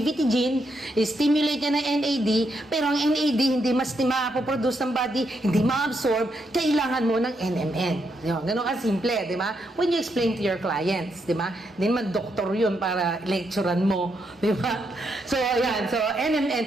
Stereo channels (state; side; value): normal; both; correlation 0.79